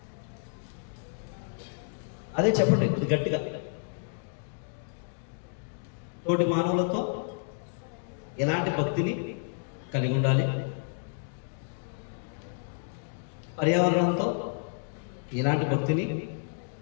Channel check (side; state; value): right; silent; digital silence